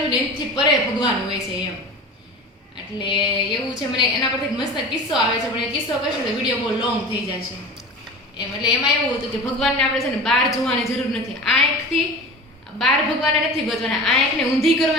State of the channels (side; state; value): both; normal; correlation 0.35